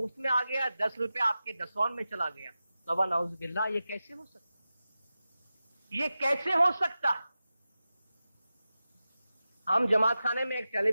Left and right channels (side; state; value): both; inverted; correlation -0.94